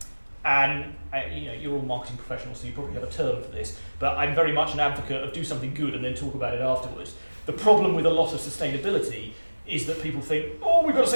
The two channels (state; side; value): inverted; both; correlation -1.00